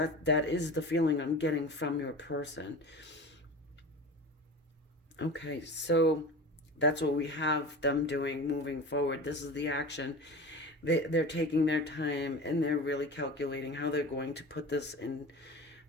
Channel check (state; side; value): normal; both; correlation 0.33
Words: is the feeling I'm getting from your person. Okay, so that's what we have them doing moving forward. This is the action. They're taking their time, and they're really calculating how they're going to put this in